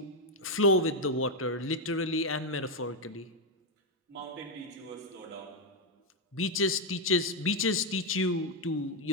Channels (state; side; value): normal; both; correlation 0.02